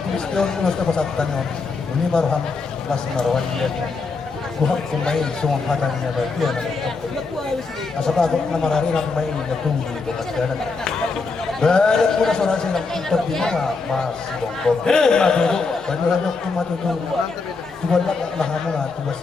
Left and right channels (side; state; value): right; quieter; 4.3 dB